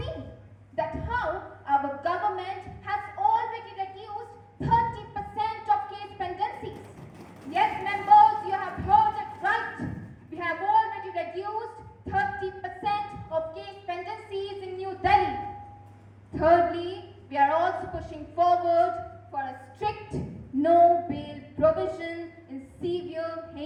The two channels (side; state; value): both; identical; correlation 1.00